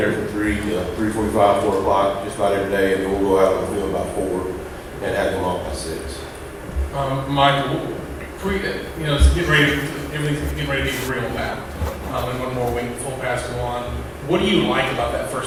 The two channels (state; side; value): identical; both; correlation 1.00